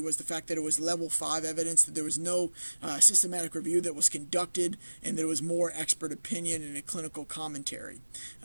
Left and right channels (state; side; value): inverted; both; correlation -1.00